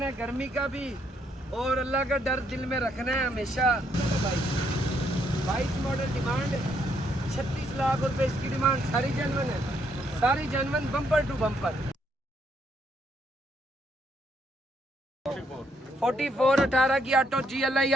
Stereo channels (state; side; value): normal; both; correlation 0.73